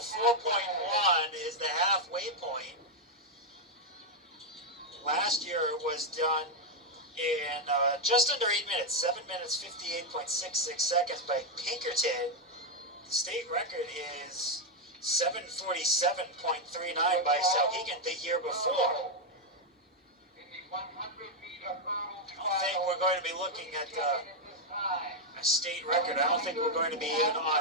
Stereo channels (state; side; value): normal; both; correlation 0.01